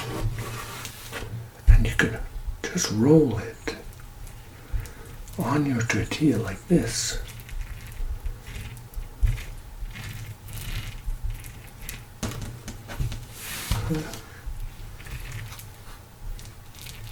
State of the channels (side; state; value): both; identical; correlation 1.00